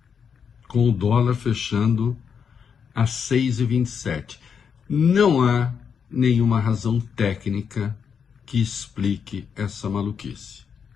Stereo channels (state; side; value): quieter; right; 6.8 dB